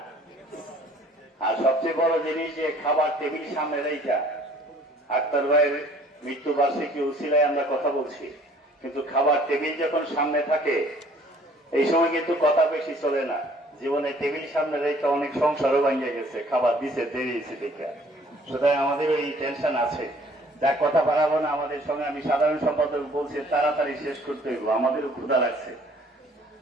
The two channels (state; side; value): normal; both; correlation 0.56